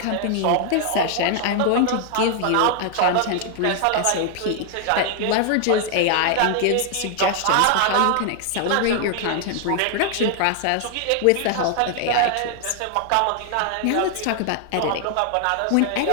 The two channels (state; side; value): different; both; correlation 0.00